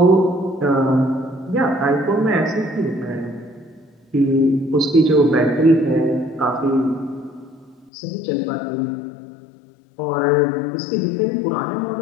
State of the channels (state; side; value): drops out; right; at 7.9 s